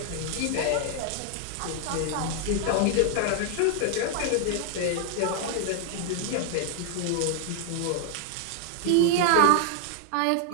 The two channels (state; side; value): different; both; correlation 0.00